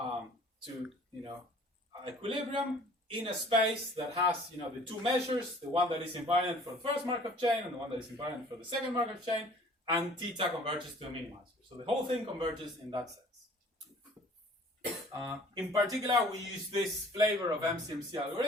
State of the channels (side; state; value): both; normal; correlation 0.51